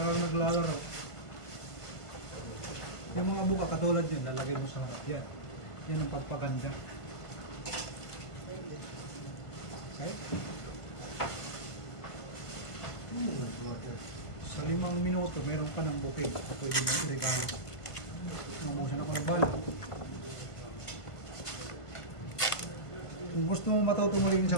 Yung mga buka katulad yun, lalagay mo sa harap yan. Yan ang pagpaganda. Okay? Sa 5 minuto, meron ka ng bouquet. Pwede mo i-regalo. Mamusan ako ng bala. Kung gusto mo matuto mo rin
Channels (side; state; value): right; late; 1.5 ms